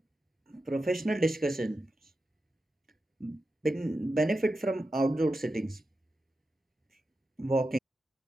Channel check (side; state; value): both; normal; correlation 0.90